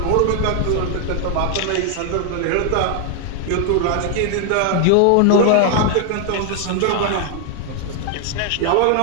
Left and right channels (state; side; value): different; both; correlation 0.00